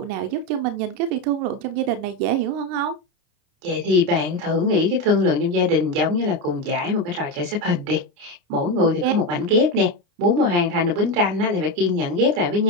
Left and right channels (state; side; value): late; left; 29 ms